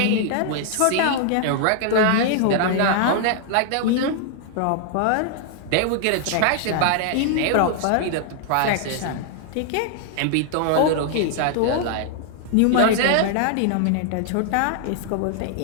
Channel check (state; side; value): different; both; correlation 0.00